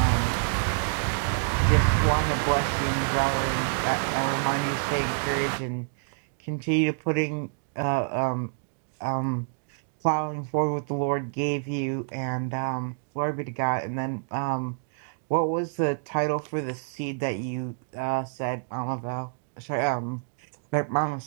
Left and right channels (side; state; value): left; silent; digital silence